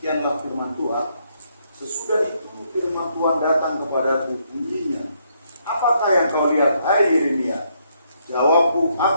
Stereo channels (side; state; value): both; inverted; correlation -0.73